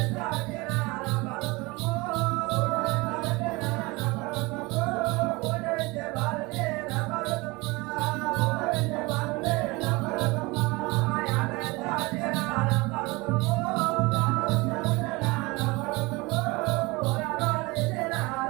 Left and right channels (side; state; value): left; quieter; 24.0 dB